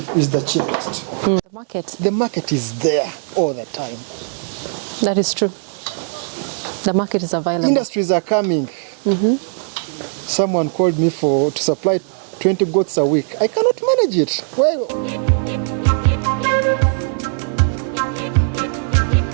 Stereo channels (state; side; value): silent; left; 67 dB below the other